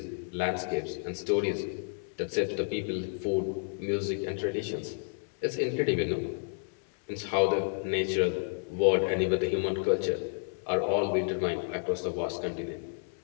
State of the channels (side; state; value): right; silent; 57 dB below the other